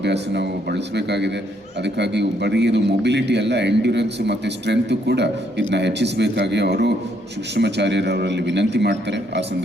ನಾವು ಬಳಸಬೇಕಾಗಿದೆ. ಅದಕ್ಕಾಗಿ ಬರೀ ಇದು ಮೊಬಿಲಿಟಿ ಅಲ್ಲ, ಎಂಡ್ಯೂರೆನ್ಸ್ ಮತ್ತು ಸ್ಟ್ರೆಂತ್ ಕೂಡ ಇದನ್ನ ಹೆಚ್ಚಿಸಬೇಕಾಗಿ ಅವರು ಕೃಷ್ಣಮಾಚಾರ್ಯರವರಲ್ಲಿ ವಿನಂತಿ ಮಾಡ್ತಾರೆ. ಆ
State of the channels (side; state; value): both; normal; correlation 0.71